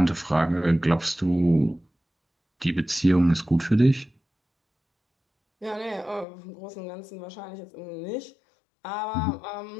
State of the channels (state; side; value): drops out; right; at 6.2 s